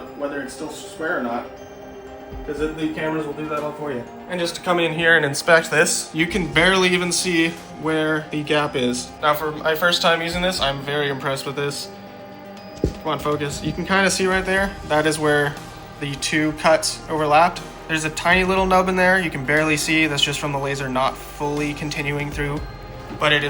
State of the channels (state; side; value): identical; both; correlation 1.00